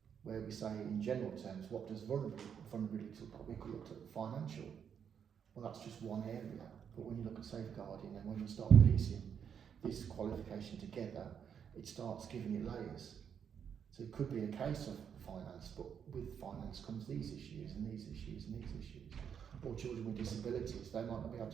Where we say in general terms, what does vulnerability look like? We could look at financial. Well, that's just one area. But when you look at safeguarding and when you start piecing this qualification together, it starts giving you layers. So it could be a case of finance, but with finance comes these issues and these issues and these issues. Or children with disabilities, they might not be able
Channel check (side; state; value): left; quieter; 7.8 dB